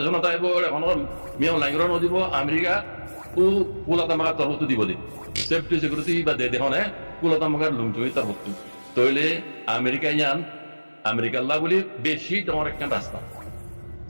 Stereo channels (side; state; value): both; inverted; correlation -1.00